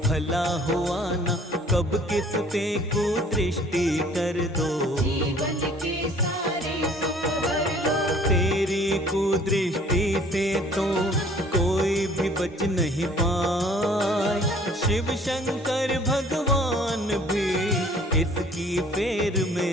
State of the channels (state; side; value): normal; both; correlation 0.54